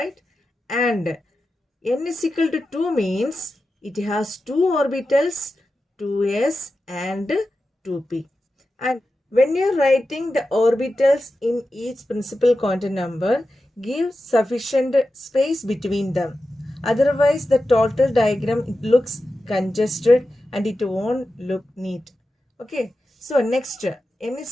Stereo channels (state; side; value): normal; both; correlation 0.92